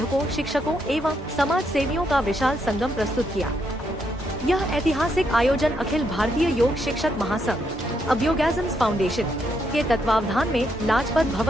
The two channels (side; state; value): both; normal; correlation 0.77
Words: शिक्षकों एवं समाज सेवियों का विशाल संगम प्रस्तुत किया। यह ऐतिहासिक आयोजन अखिल भारतीय योग शिक्षक महासंघ अभ्योगैज़म्स फाउंडेशन के तत्वावधान में लाजपत